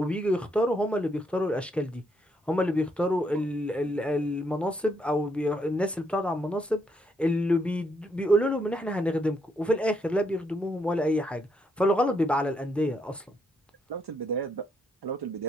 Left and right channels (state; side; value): normal; both; correlation 0.75